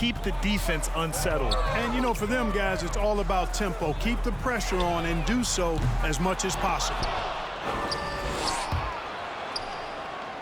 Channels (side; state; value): both; identical; correlation 1.00